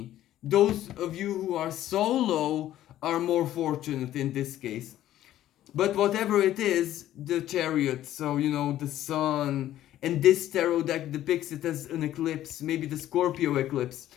those of you who are solo are more fortunate in this case. But whatever it is, the Chariot, so the sun, and this tarot deck depicts it as an eclipse, maybe the Scorpio eclipse,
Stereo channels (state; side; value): quieter; right; 13.0 dB